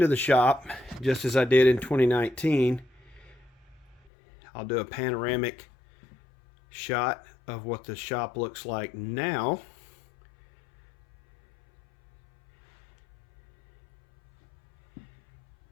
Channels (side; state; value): right; drops out; at 4.0 s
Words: the shop, just as I did in 2019, I'll do a panoramic shot of what the shop looks like now.